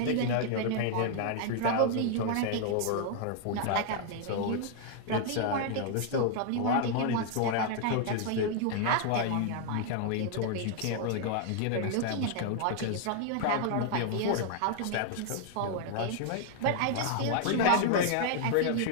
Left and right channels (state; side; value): different; both; correlation 0.00